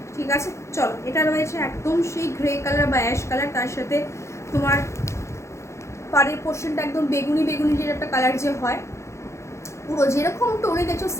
ঠিক আছে? চলো, এটা রয়েছে একদম সেই গ্রে কালার বা অ্যাশ কালার, তার সাথে তোমার পাড়ের পোর্শনটা একদম বেগুনি বেগুনি যে একটা কালার যে হয়, পুরো যেরকম টোনে দেখছো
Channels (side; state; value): right; late; 0.14 ms